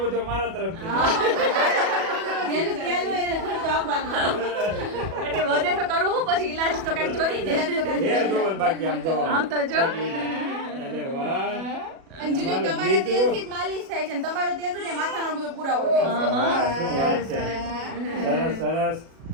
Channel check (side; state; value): left; late; 37 ms